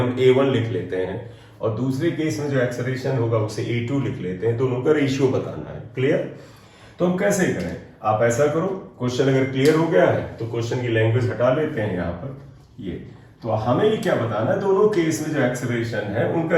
a1 लिख लेते हैं और दूसरे केस में जो एक्सेलरेशन होगा उसे a2 लिख लेते हैं। दोनों का रेशियो बताना है। क्लियर? तो हम कैसे करें, आप ऐसा करो, क्वेश्चन अगर क्लियर हो गया है तो क्वेश्चन की लैंग्वेज हटा लेते हैं यहाँ पर। ये तो हमें ये क्या बताना है, दोनों केस में जो एक्सेलरेशन है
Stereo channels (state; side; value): identical; both; correlation 1.00